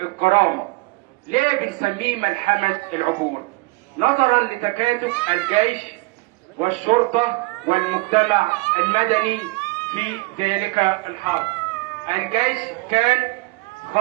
ليه بنسميه ملحمة العبور؟ نظرا لتكاتف الجيش والشرطة والمجتمع المدني في ذلك الحرب. الجيش كان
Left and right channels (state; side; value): quieter; left; 24.6 dB